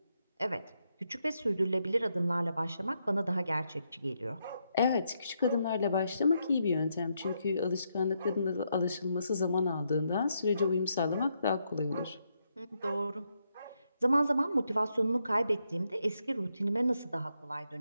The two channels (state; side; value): inverted; both; correlation -0.80